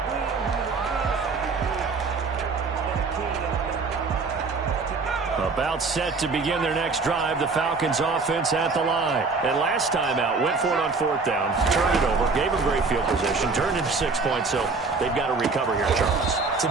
About set to begin their next drive. The Falcons offense at the line. And last time out, went for it on 4th down, turned it over, gave them great field position, turned into 6 points, so they've got to recover here, Charles. It's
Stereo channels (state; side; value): quieter; left; 4.2 dB